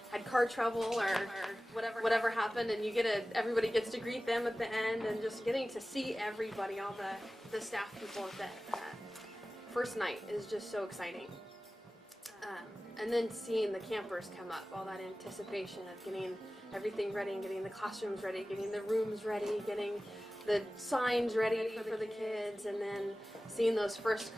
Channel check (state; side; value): normal; both; correlation 0.96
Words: had car trouble or whatever happened, and everybody gets to greet them at the end, and just getting to see everybody, all the staff people at that first night is just so exciting. And then seeing the campers come up, all that anticipation of getting everything ready and getting the classrooms ready, getting the rooms ready, getting the signs ready for the kids, and then seeing those first